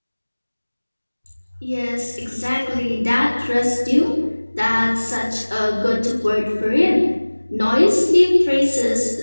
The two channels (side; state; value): both; inverted; correlation -1.00